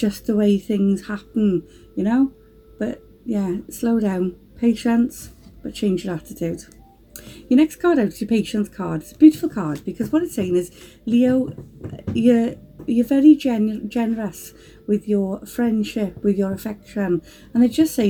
the way things happen, you know. But yeah, slow down, patience, but change your attitude. Your next card out is your patience card. It's a beautiful card because what it's saying is, Leo, you're very generous with your friendship, with your affection, and they're just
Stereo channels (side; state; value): both; identical; correlation 1.00